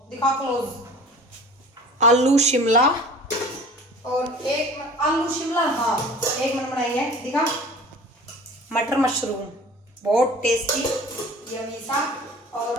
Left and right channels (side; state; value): both; normal; correlation 0.44